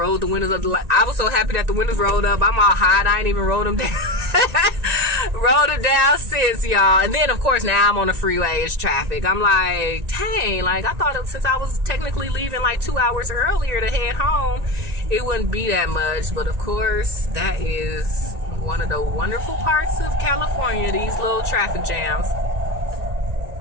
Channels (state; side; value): late; left; 1.9 ms